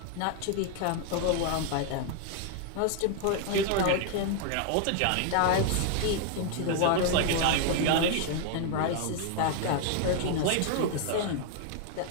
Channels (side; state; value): both; different; correlation 0.00